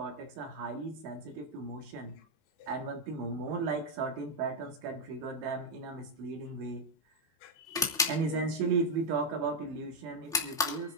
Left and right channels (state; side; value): normal; both; correlation 0.02